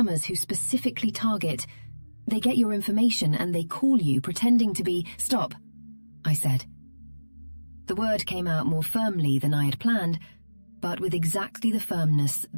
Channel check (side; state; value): both; inverted; correlation -1.00